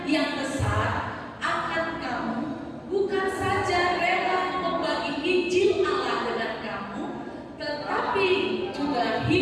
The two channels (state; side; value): identical; both; correlation 1.00